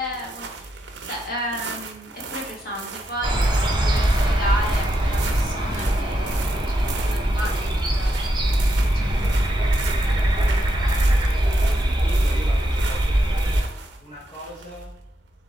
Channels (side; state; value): both; normal; correlation 0.82